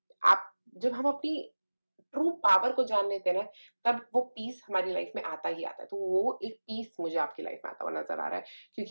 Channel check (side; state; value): both; inverted; correlation -1.00